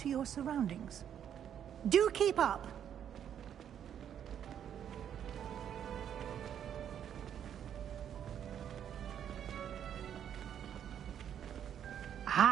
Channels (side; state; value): left; quieter; 9.3 dB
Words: your surroundings. Do keep up!